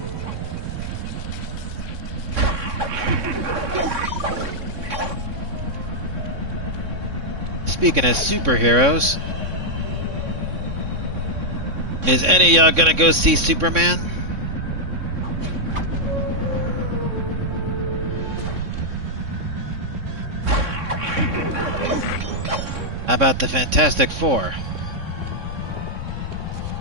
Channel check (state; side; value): late; left; 3.6 ms